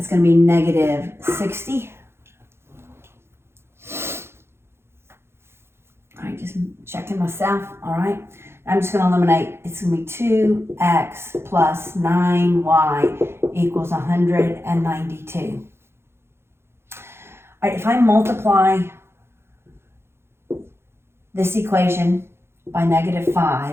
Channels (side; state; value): left; late; 0.12 ms